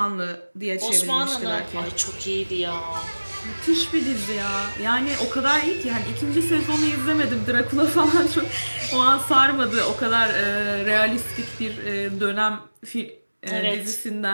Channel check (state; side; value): inverted; both; correlation -1.00